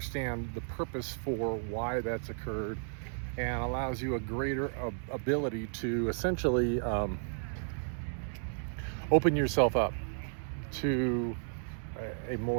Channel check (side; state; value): left; silent; 55 dB below the other